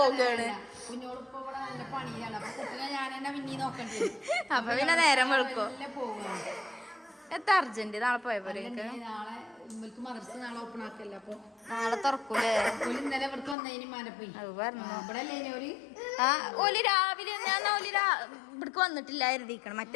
കുഞ്ഞോളിപ്പോ ഇവിടെ നല്ല പണിയാണ്. അപ്പൊ കുട്ടിനെ ഞാൻ തന്നെ പിന്നീ നോക്കണ്ടി വരും. അപ്പൊ പിന്നെ നേരം വെളുക്കോ? പോവുകയാണ്. എത്ര അർജന്റ്? നാളെ പോയ പോലെ. നാളെ ഇവർക്ക് മദർസ് നാളെ ഓപ്പൺ ആക്കല്ല. അപ്പൊ നാളെ തുറക്കൂലേ? ഇന്നലെ ഇവർക്ക് വന്നതിന് മാനെ പോയി. ഇവിടെ അല്ലേ ഓല് രാവിലെ ഇവിടക്ക് വന്നിട്ടില്ല എഴുതിക്കണം.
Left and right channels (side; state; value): right; drops out; at 13.6 s